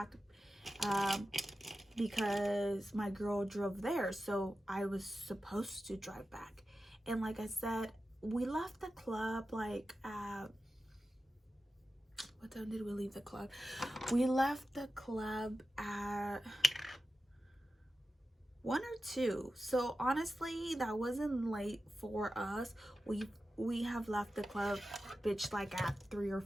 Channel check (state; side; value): normal; both; correlation 0.93